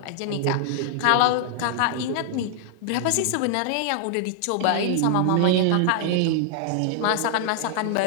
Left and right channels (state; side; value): different; both; correlation -0.01